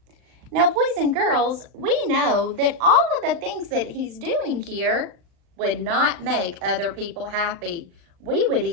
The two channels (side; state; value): left; late; 37 ms